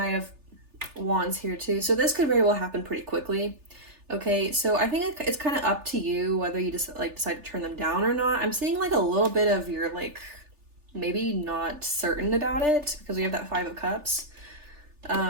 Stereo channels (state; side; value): late; left; 3.4 ms